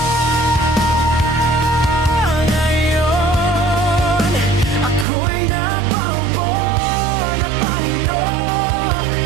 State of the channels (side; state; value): left; drops out; at 5.1 s